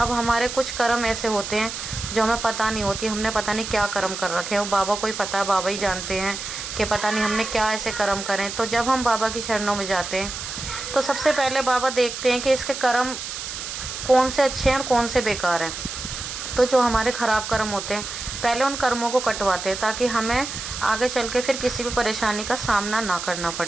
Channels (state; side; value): noise; right; hiss, 7 dB below the sound